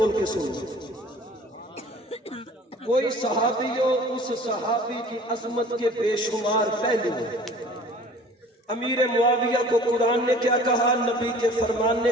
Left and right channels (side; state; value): both; normal; correlation 0.48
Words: کے سنو۔ کوئی صحابی ہو، اس صحابی کی عظمت کے بے شمار پہلو ہیں۔ امیر معاویہ کو قرآن نے کیا کہا، نبی کے فرمان نے